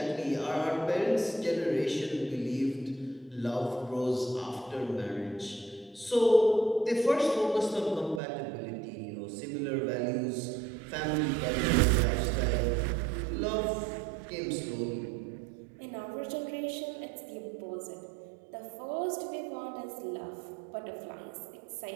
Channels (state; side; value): drops out; left; at 8.2 s